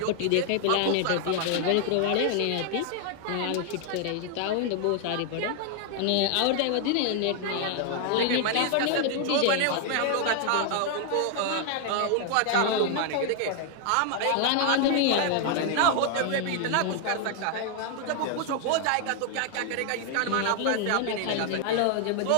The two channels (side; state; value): both; different; correlation 0.00